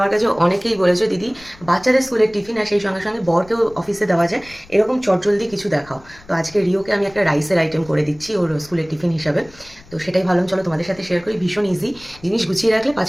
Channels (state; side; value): noise; left; rumble, 23 dB below the sound